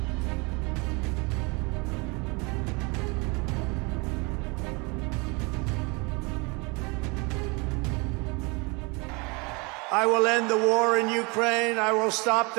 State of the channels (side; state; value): left; quieter; 28.7 dB